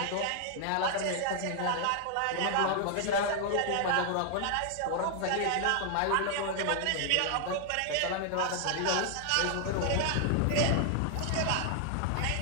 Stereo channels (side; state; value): both; different; correlation 0.00